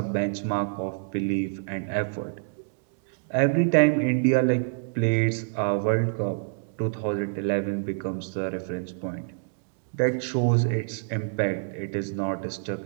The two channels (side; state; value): left; silent; digital silence